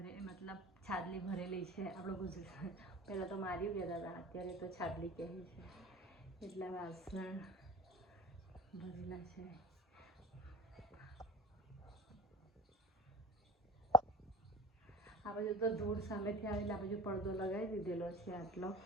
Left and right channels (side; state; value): both; normal; correlation 0.38